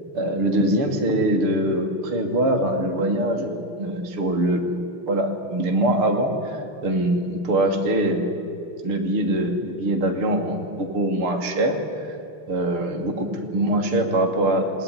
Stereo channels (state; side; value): late; left; 6.7 ms